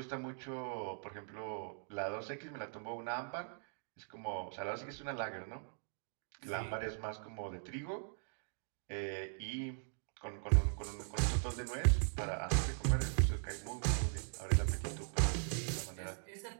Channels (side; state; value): left; silent; digital silence